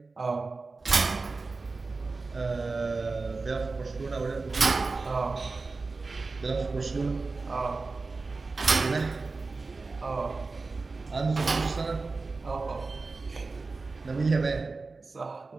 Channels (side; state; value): left; quieter; 3.9 dB